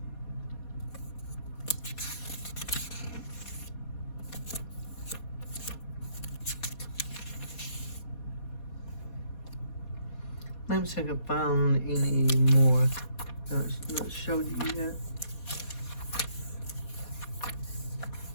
Let me see if I can find any more that's not showed you yet.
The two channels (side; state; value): right; late; 4.2 ms